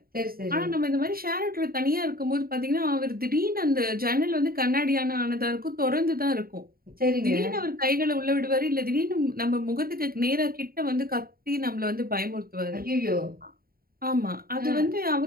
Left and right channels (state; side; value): late; left; 0.43 ms